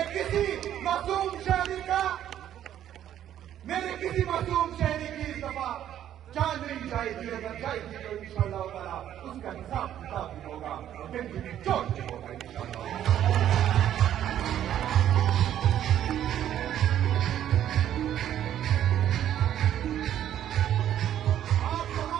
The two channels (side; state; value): left; quieter; 11.0 dB